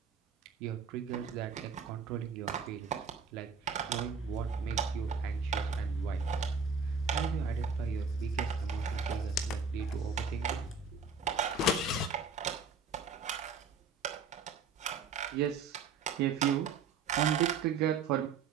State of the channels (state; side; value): quieter; left; 5.0 dB